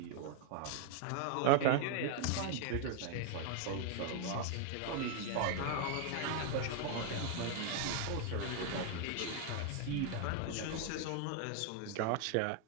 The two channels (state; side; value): different; both; correlation 0.00